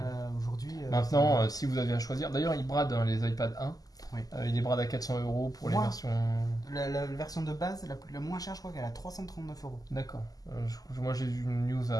Aujourd'hui. Maintenant, si vous avez à choisir, d'ailleurs, ils bradent les iPad 1. Oui. Il les brade à 400 € pour les versions. La version de base, la moins chère, je crois qu'elle a 339 €. D'accord. Moi, j'ai vu une news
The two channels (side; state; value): right; late; 0.17 ms